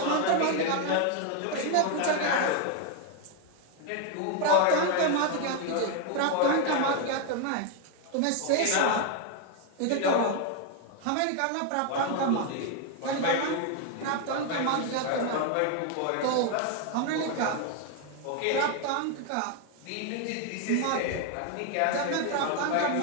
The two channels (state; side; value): different; both; correlation 0.01